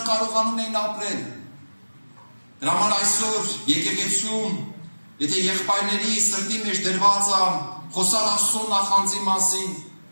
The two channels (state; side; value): inverted; both; correlation -1.00